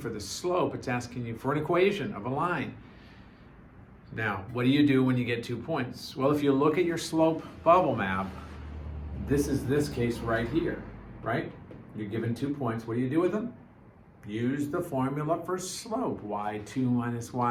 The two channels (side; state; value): both; identical; correlation 1.00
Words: the slope, it's asking you for an equation of a line. Now, what do you do when you get 2 points? Well, if you look at your slope bubble map, this is this case right here, right? You're given 2 points. What do you do with them? Use the formula for slope, y2 minus